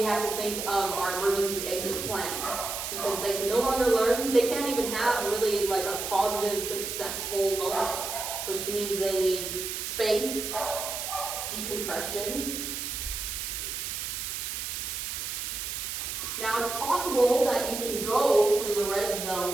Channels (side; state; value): right; noise; hiss, 4 dB below the sound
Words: have to think of our emergency exit plan. Because they can no longer learn, they can't even have really like a positive, successful moment, which means they need space, decompression. Now it's possible that you can go from the red